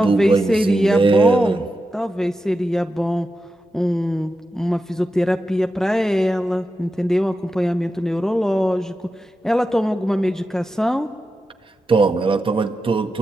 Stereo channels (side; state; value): both; normal; correlation 0.90